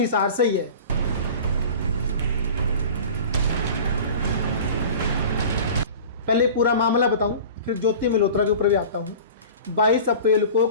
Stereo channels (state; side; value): inverted; both; correlation -0.38